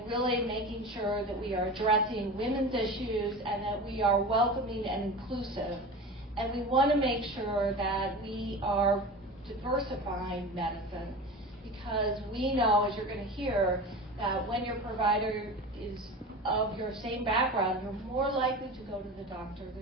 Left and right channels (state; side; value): normal; both; correlation 0.31